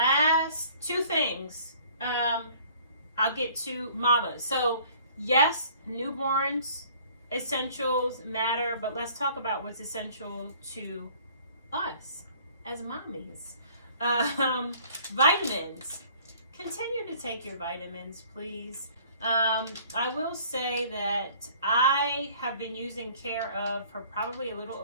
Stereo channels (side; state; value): both; inverted; correlation -0.54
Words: two things. I'll get to mamas. So yes, newborns essentials matter, but let's talk about what's essential to us as mommies. Vitamins. Continue to take your vitamins, please. I will say that I have been using Care Of for probably a little